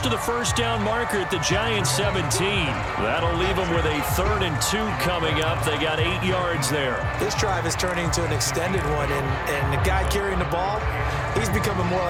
to the 1st down marker at the Giants 17. That'll leave them with a 3rd and 2 coming up. They got 8 yards there. This drive is turning into an extended one, and the guy carrying the ball, he's becoming more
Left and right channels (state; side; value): identical; both; correlation 1.00